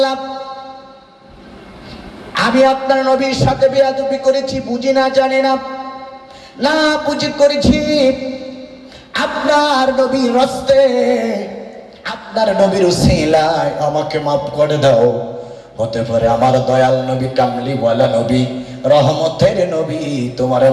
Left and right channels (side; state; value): both; identical; correlation 1.00